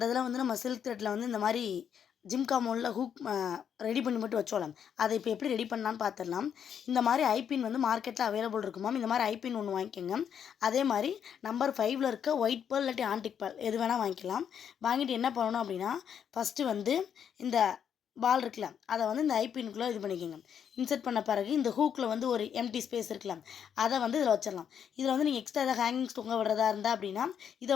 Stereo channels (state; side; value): quieter; right; 8.3 dB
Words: இதில் வந்து நம்ம சில்க் த்ரெட்டில் வந்து இந்த மாதிரி ஜிம்கா மோல்டில் ஹூக் ரெடி பண்ணி மட்டும் வச்சோலாம். அதை இப்போ எப்படி ரெடி பண்ணலான்னு பார்த்துடலாம். இந்த மாதிரி ஐபின் வந்து மார்க்கெட்டில் அவைலபிள் இருக்கும் மேம். இந்த மாதிரி ஐபின் ஒன்று வாங்கிக்கோங்க. அதே மாதிரி நம்பர் 5ல் இருக்க ஒயிட் பேர்ல் இல்லாட்டி ஆன்டிக் பேர்ல் எது வேணால் வாங்கிக்கலாம். வாங்கிட்டு என்ன பண்ணணும் அப்படின்னா, ஃபஸ்ட்டு வந்து இந்த பால் இருக்குல்ல, அதை வந்து இந்த ஐபின்குள்ளே இது பண்ணிக்கோங்க. இன்சர்ட் பண்ண பிறகு இந்த ஹூக்கில் வந்து ஒரு எம்டி ஸ்பேஸ் இருக்கலாம், அதை வந்து இதில் வச்சிடலாம். இதில் வந்து நீங்கள் எக்ஸ்ட்ரா ஏதாவது ஹேங்கிங்ஸ் தொங்க விடுறதா இருந்தால் அப்படின்னா இதை